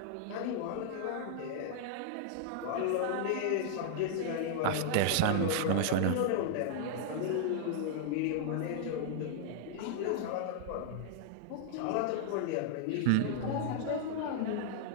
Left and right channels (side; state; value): both; different; correlation -0.01